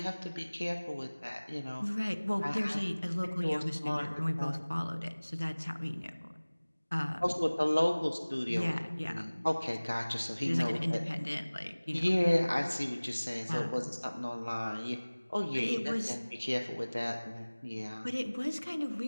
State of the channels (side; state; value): both; inverted; correlation -1.00